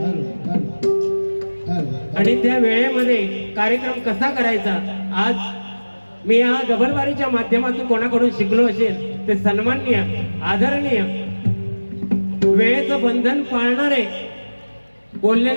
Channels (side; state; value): both; inverted; correlation -1.00